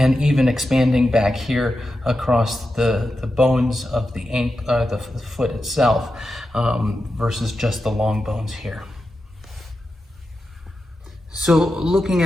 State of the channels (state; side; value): normal; both; correlation 0.90